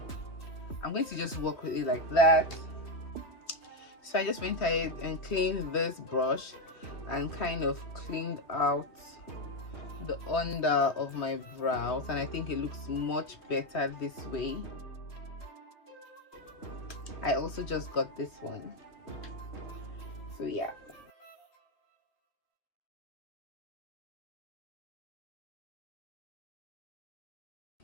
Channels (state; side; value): late; right; 3.2 ms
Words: I'm going to just work with it like that. So I just went ahead and cleaned this brush and kind of cleaned out the under of my brows, and I think it looks much better this way. I also just got this one, so yeah.